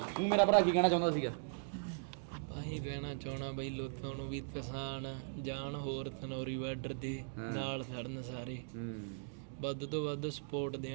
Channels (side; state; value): left; silent; digital silence